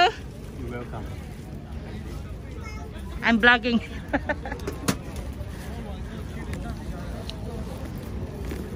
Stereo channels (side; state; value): both; identical; correlation 1.00